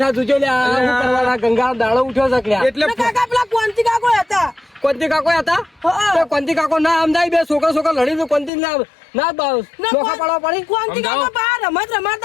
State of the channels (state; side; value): drops out; right; at 8.5 s